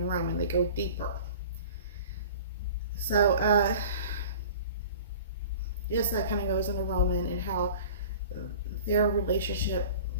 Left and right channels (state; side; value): inverted; both; correlation -0.42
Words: Roman. They go deeper. So, yes, that kind of goes into Roman and how their relationship